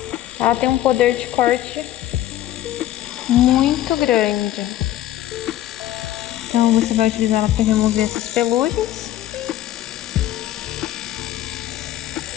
ela tem um poder de corte muito grande. Então você vai utilizar ela para remover essas pelugens.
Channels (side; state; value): right; quieter; 13.4 dB